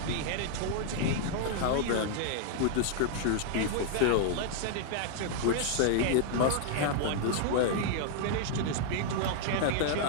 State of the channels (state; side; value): different; both; correlation -0.01